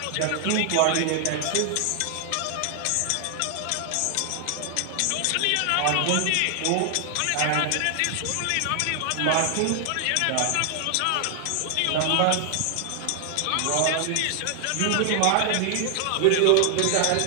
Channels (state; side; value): different; both; correlation 0.00